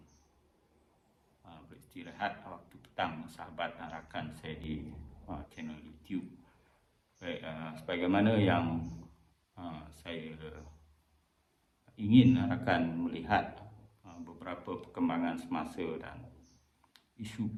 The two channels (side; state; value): both; identical; correlation 1.00